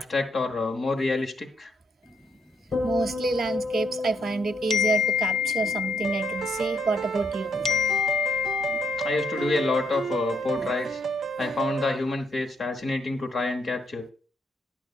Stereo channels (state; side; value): normal; both; correlation 0.73